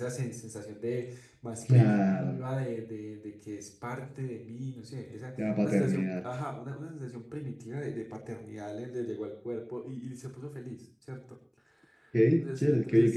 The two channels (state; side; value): identical; both; correlation 1.00